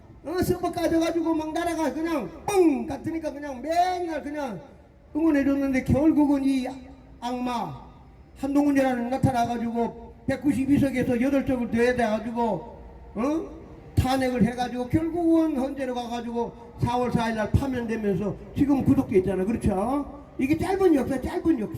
서버 까져가지고 막 나라가 그냥 뻥 같으니까 그냥 맨날 그냥 응원해줬는데 결국은 이 악마 한동훈이라는 나타나가지고 192석에서 8석을 더해가지고 탄핵을 해가지고 결국은 헌재로 가가지고 4월 4일날 파면되면서 지금 구속돼 있잖아. 그렇죠? 이게 짧은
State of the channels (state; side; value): identical; both; correlation 1.00